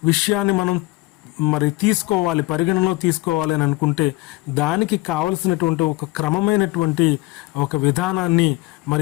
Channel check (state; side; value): quieter; right; 20.4 dB